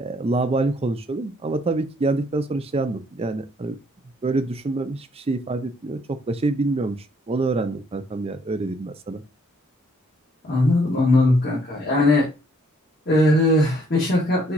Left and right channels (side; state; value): both; normal; correlation 0.66